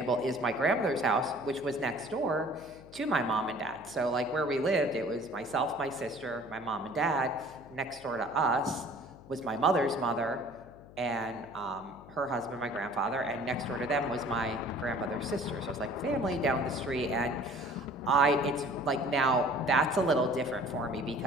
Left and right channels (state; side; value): noise; left; hum, 20 dB below the sound